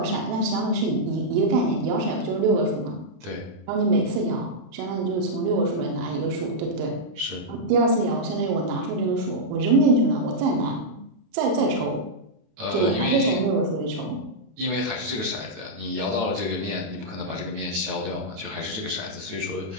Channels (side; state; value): left; late; 32 ms